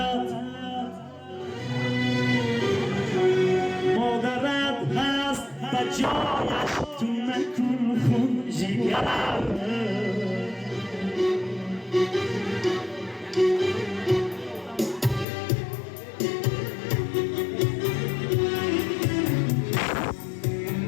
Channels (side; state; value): right; drops out; at 15.2 s